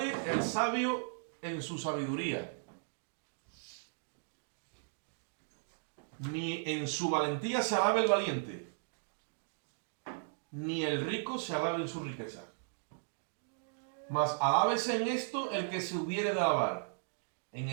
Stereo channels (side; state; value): left; silent; digital silence